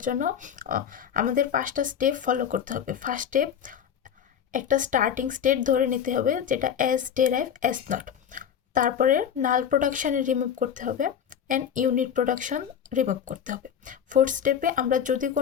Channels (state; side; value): quieter; right; 8.6 dB